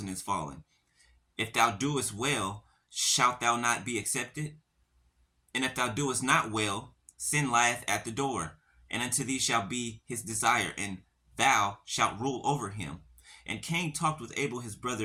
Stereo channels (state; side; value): identical; both; correlation 1.00